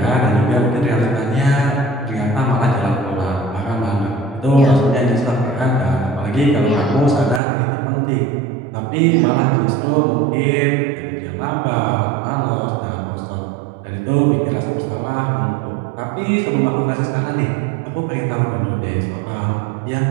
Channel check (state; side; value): drops out; left; at 7.4 s